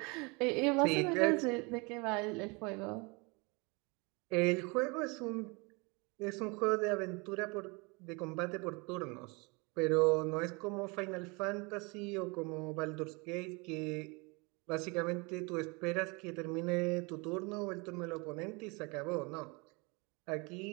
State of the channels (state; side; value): quieter; left; 28.9 dB